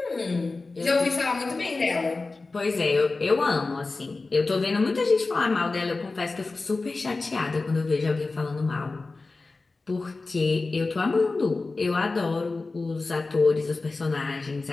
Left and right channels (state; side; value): quieter; right; 3.6 dB